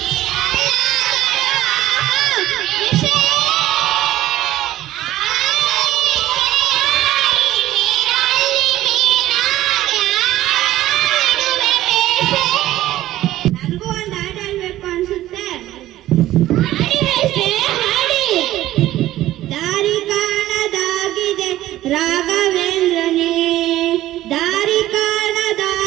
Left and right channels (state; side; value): quieter; left; 14.6 dB